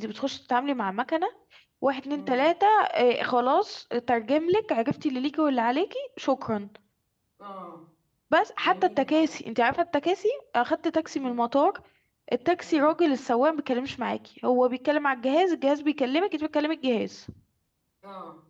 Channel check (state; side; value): identical; both; correlation 1.00